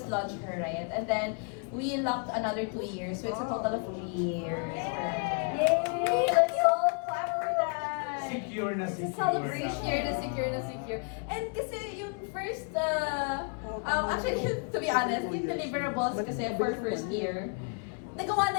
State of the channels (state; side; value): quieter; right; 37.4 dB